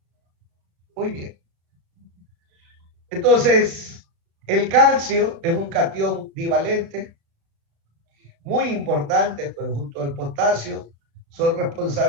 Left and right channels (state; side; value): late; left; 35 ms